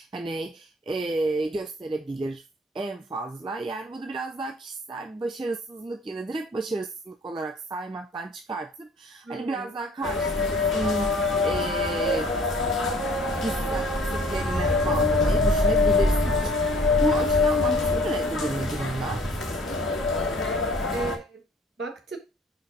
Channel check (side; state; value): both; normal; correlation 0.53